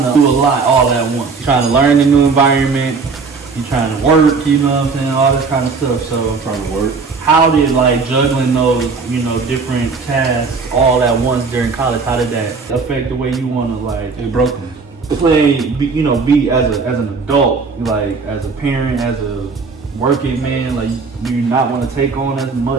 to do a lot all at once. You're trying to learn a new environment. You're trying to work, you know what I'm saying? All this kind of stuff. So I'm trying to work. How did juggling those, you know, different tasks all at once during college, how did that affect the way you want to It broke me. Be as an adult, as a parent, as a working man, do you not want to take on as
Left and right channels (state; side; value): quieter; left; 4.6 dB